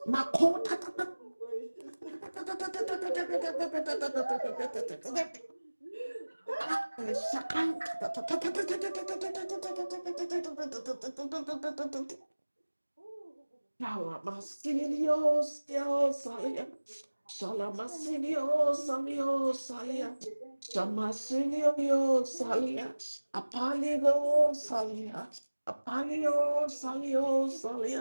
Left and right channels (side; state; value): both; inverted; correlation -1.00